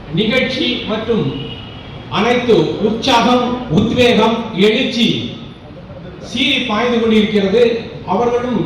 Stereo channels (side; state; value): both; identical; correlation 1.00